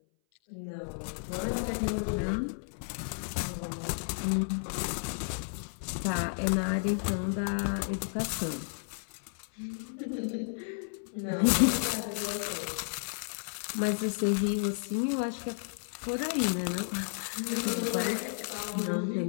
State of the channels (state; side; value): silent; right; 56 dB below the other